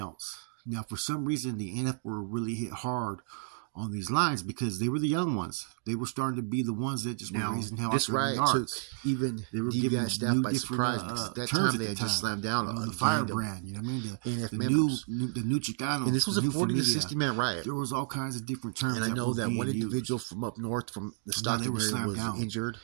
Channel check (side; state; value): left; silent; digital silence